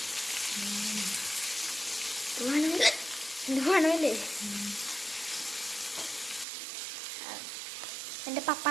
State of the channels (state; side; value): drops out; left; at 6.5 s